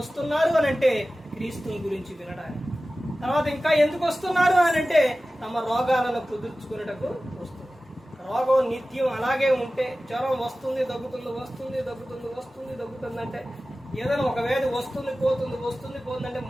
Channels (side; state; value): both; normal; correlation 0.96